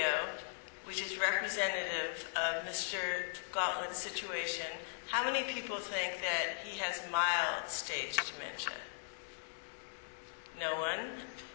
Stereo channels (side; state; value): right; silent; digital silence